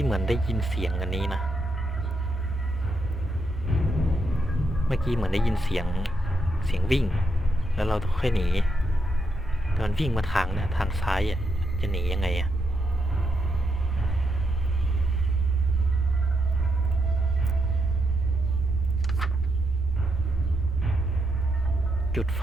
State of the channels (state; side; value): normal; both; correlation 0.81